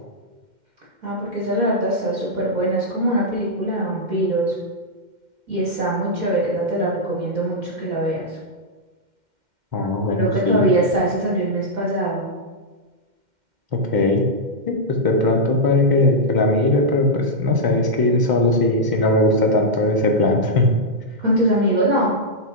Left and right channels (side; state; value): left; late; 2.1 ms